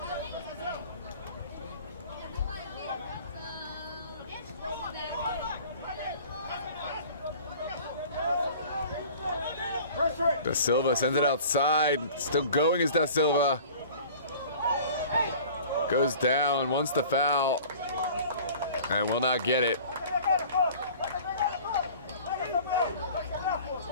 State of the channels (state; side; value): inverted; both; correlation -0.45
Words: Da Silva sends it outside. Still going is Da Silva. Goes down, wants the foul, and will not get it.